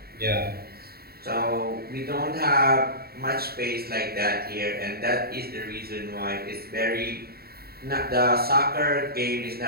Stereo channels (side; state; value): left; late; 0.45 ms